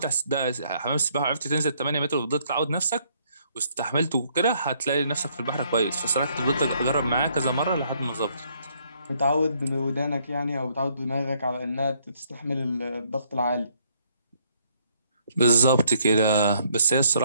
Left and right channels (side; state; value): both; inverted; correlation -0.68